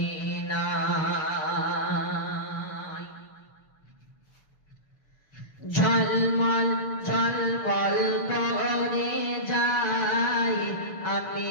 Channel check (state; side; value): late; right; 6.5 ms